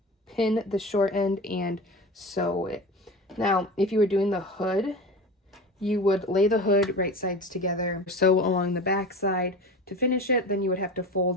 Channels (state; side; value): normal; both; correlation 0.31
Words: pin the short end and sew it. Now, if you were doing the hood, you would lay the hood right sides together, sew along the back side to finish it. Then you would have to